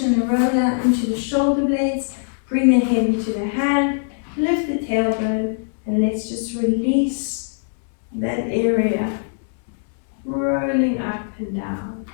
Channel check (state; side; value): silent; right; digital silence